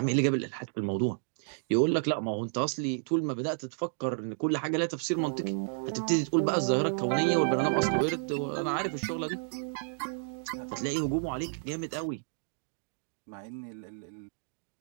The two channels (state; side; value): silent; left; digital silence